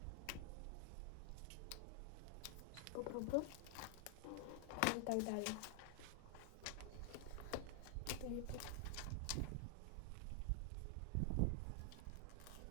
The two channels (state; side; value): different; both; correlation 0.00